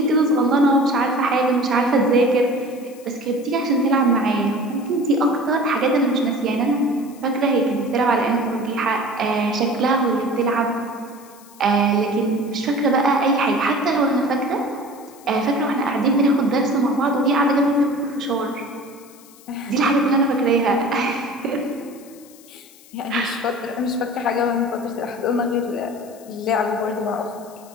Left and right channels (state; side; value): noise; left; hiss, 24 dB below the sound